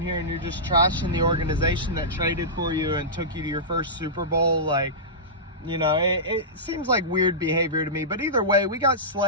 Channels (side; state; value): both; normal; correlation -0.17